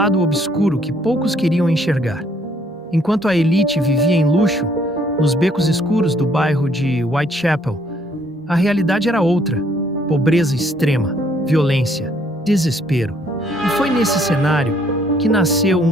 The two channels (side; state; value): both; normal; correlation 0.66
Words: obscuro que poucos queriam enxergar. Enquanto a elite vivia em luxo, nos becos escuros do bairro de Whitechapel, a realidade era outra: pobreza extrema, violência, desespero. E foi nesse cenário que nasceu